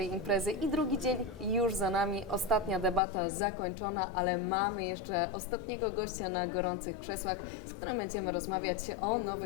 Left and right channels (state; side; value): drops out; right; at 3.0 s